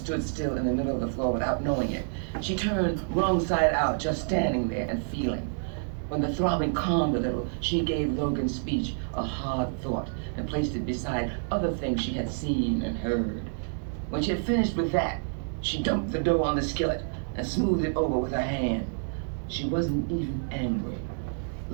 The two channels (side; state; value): left; silent; digital silence